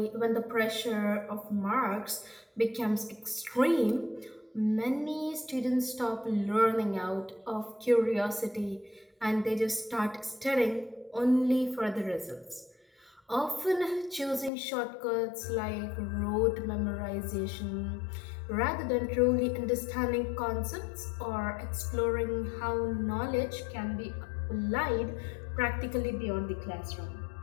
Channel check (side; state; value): right; drops out; at 14.5 s